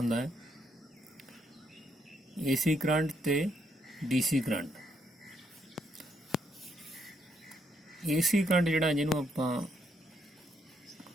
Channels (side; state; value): both; normal; correlation 0.74